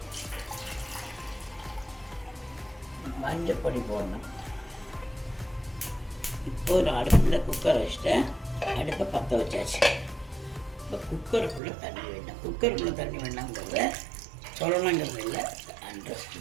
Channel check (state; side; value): drops out; left; at 11.6 s